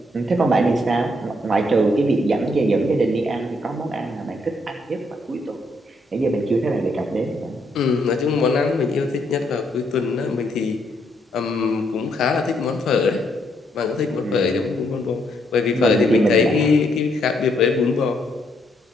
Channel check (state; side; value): normal; both; correlation 0.73